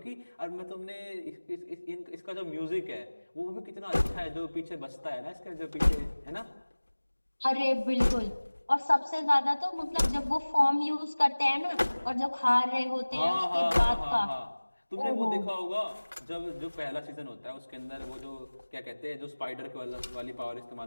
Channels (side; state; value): both; inverted; correlation -1.00